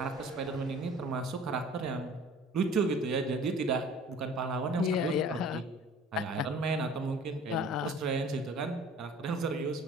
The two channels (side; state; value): both; normal; correlation 0.47